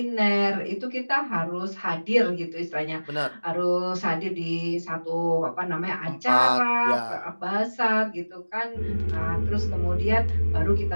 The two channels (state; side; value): inverted; both; correlation -1.00